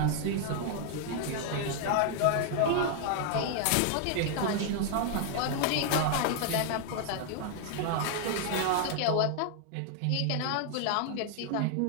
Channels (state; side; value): different; both; correlation 0.00